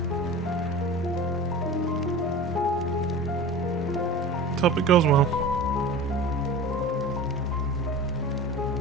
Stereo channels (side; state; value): both; normal; correlation 0.35